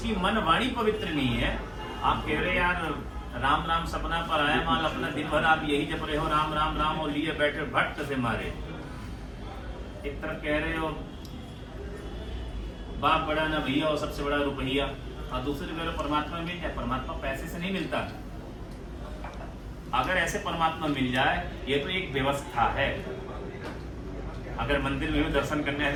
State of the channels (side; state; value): both; identical; correlation 1.00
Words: मन वाणी पवित्र नहीं है, आप कह रहे यार राम राम सपना पर आया माल, अपना दिन भर आप यही जप रहे हो राम राम राम और लिए बैठे भट्ट से मारे। एक तरफ कह रहे हो बाप बड़ा ना भैया और सबसे बड़ा रुपया, और दूसरी कह रहे हो परमात्मा मिल जाए। परमात्मा पैसे से नहीं मिलता। अगर ऐसे परमात्मा मिल जाए, ये तो एक व्यवस्था है। अगर मंदिर में भी दर्शन करने